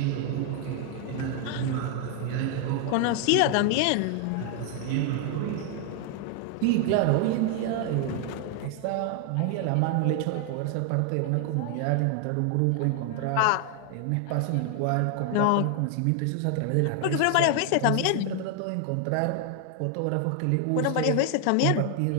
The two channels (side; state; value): both; different; correlation 0.00